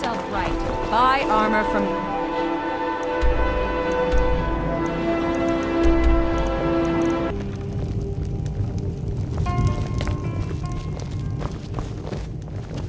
right. Buy armor from...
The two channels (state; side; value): identical; both; correlation 1.00